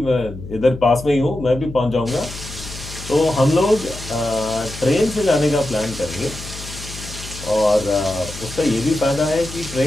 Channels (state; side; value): noise; left; hum, 12 dB below the sound